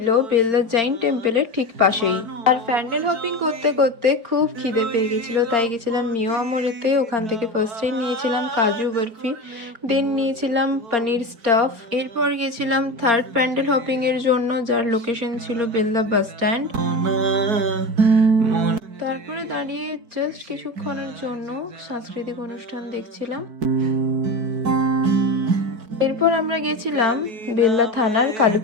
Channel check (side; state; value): left; late; 4.3 ms